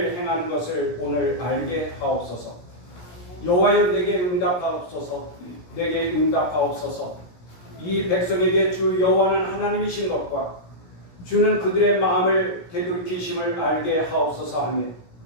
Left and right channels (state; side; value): late; right; 17 ms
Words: 행하는 것을 오늘 알게 하옵소서. 여호와여, 내게 응답하옵소서. 내게 응답하옵소서. 이 백성에게 주 여호와는 하나님이신 것과 주는 그들의 마음을 되돌이키심을 알게 하옵소서 하며,